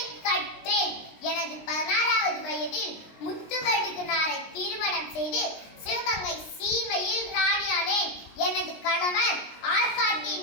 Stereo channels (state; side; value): late; right; 19 ms